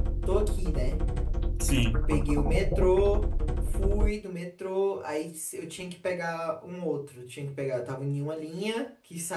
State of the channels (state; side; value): identical; both; correlation 1.00